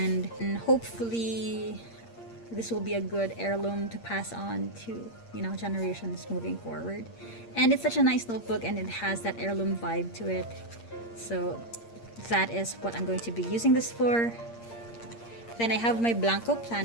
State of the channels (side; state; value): right; late; 8.6 ms